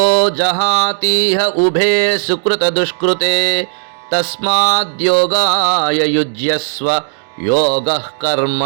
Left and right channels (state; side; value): silent; left; digital silence